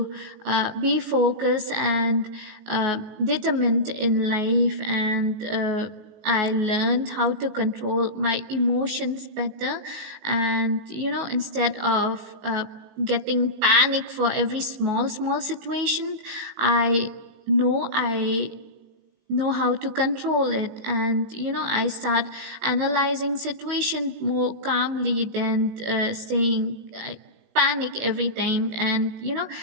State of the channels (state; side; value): late; left; 19 ms